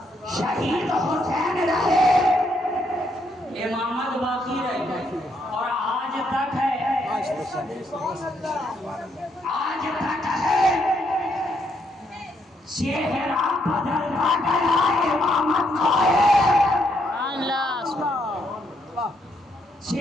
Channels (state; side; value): normal; both; correlation 0.75